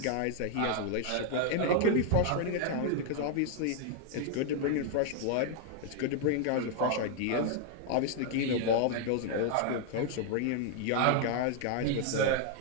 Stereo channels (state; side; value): different; both; correlation 0.00